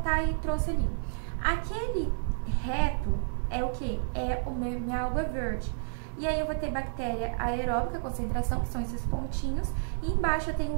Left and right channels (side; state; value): left; silent; digital silence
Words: e trouxe ali. Aquele reto é o que? É minha água verde. E aí eu vou ter bactéria aeróbica, concentração, que são esses pontinhos, e embaixo eu tenho